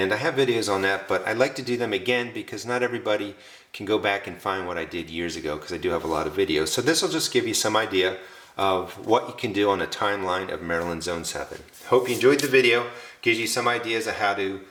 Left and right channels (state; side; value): identical; both; correlation 1.00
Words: I have videos on that, but I like to do them again because not everybody can go back and find what I did years ago because I do have a lot of videos. So this will just give you some idea of what you can do on a timeline of Maryland Zone 7. Hope you enjoyed the video. Gives you some ideas of how to